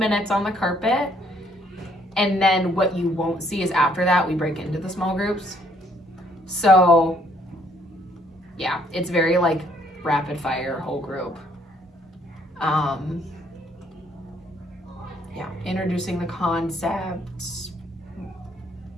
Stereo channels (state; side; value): normal; both; correlation 0.66